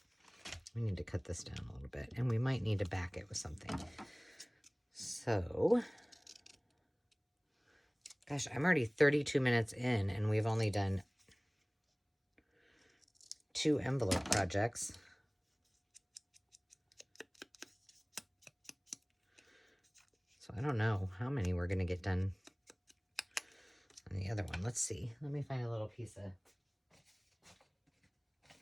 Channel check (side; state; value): both; identical; correlation 1.00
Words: We need to cut this down a little bit, and we might need to back it with something. So, gosh, I'm already 32 minutes in, and we've only done 2 envelope projects. So I don't know how many we're going to get done on the other one. Let's see. Let me find a little piece of...